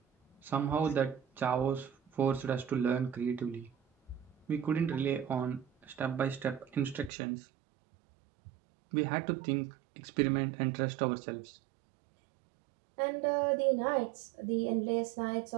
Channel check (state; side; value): drops out; left; at 7.1 s